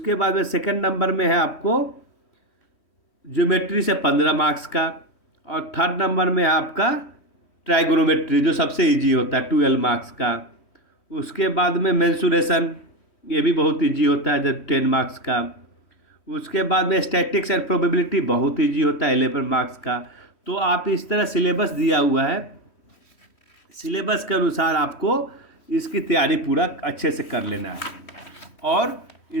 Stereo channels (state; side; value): late; right; 3.1 ms